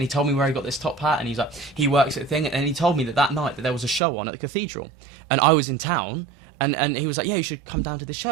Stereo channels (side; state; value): left; drops out; at 4.0 s